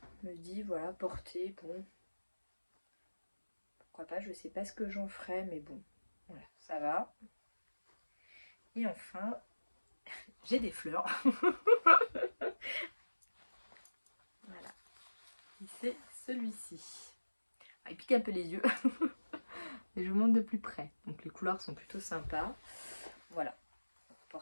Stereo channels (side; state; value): both; inverted; correlation -1.00